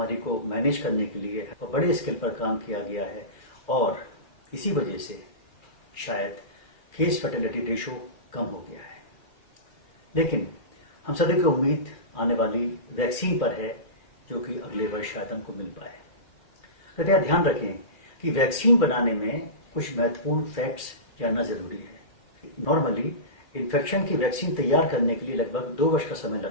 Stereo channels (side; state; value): right; late; 2.4 ms